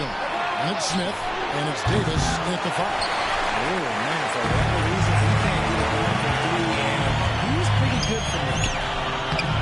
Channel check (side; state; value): both; identical; correlation 1.00